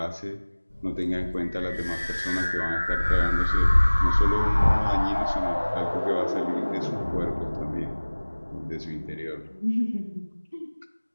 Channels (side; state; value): both; inverted; correlation -1.00